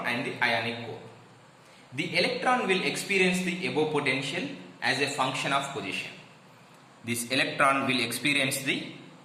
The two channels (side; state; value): both; identical; correlation 1.00